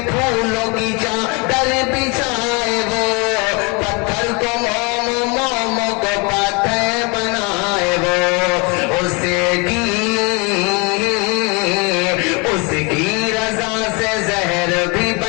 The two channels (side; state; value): right; quieter; 30.2 dB